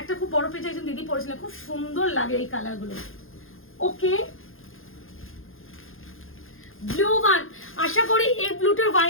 খুব বড় পেজে একজন দিদি পড়েছিলেন, খুব সুন্দর লাগে এই কালারগুলো। ওকে, ব্লু ওয়ান, আশা করি এই ব্লুটার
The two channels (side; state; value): right; late; 0.60 ms